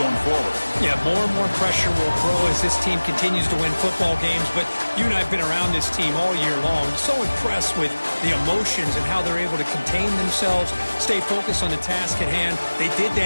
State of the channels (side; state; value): both; inverted; correlation -1.00